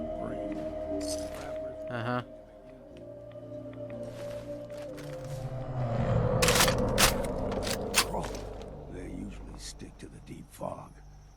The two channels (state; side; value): identical; both; correlation 1.00